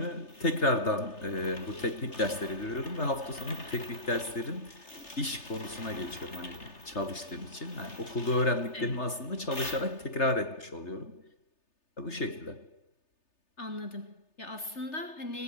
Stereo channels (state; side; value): late; right; 3.3 ms